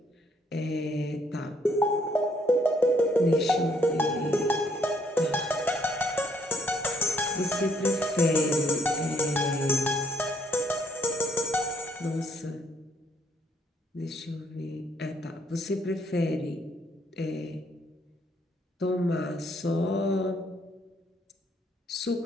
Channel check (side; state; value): both; normal; correlation 0.68